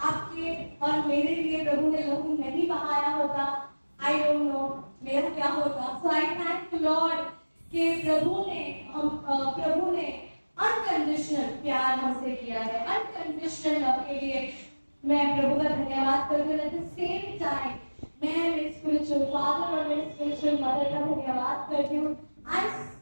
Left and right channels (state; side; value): inverted; both; correlation -1.00